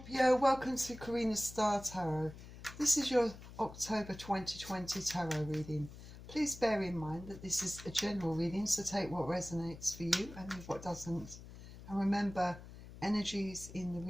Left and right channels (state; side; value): noise; left; hum, 15 dB below the sound